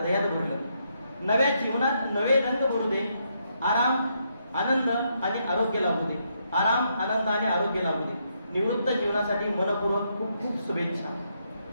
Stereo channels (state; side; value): inverted; both; correlation -0.77